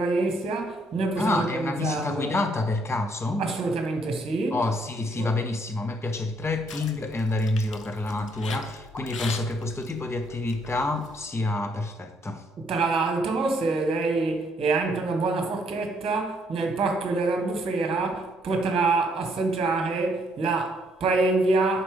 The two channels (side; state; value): both; normal; correlation 0.70